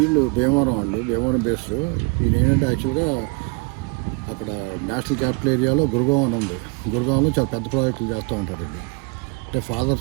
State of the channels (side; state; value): left; quieter; 30.7 dB